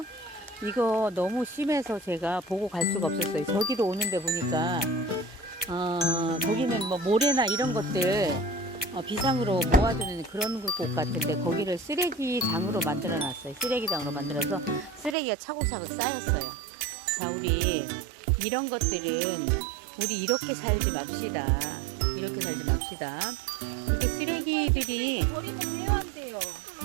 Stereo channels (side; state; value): left; drops out; at 15.2 s